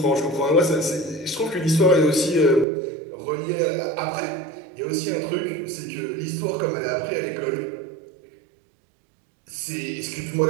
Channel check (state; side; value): drops out; left; at 2.7 s